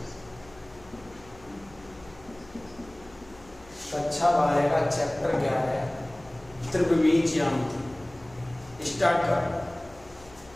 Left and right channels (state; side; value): noise; left; hum, 23 dB below the sound